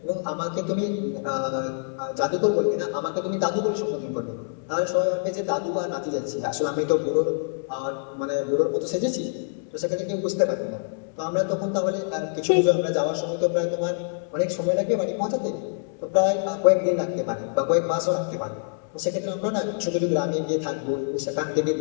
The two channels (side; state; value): right; silent; 61 dB below the other